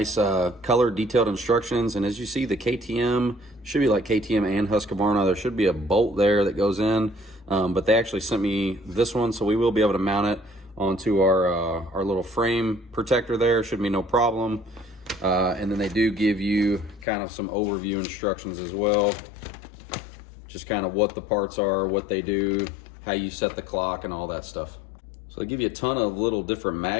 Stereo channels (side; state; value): right; drops out; at 17.1 s